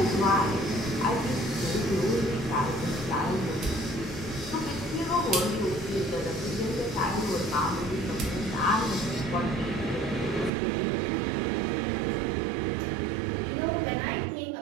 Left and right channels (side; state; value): left; drops out; at 10.5 s